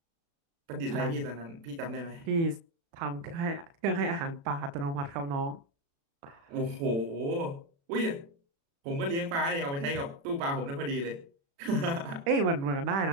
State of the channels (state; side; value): late; left; 36 ms